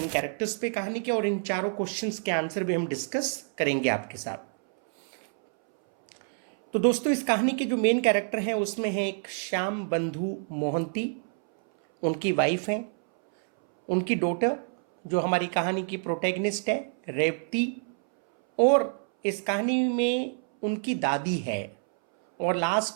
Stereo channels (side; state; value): left; silent; 60 dB below the other